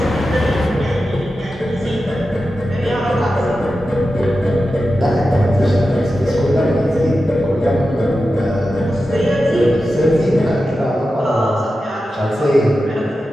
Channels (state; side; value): normal; both; correlation 0.92